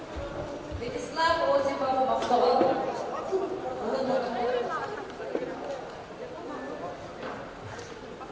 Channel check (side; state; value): both; identical; correlation 1.00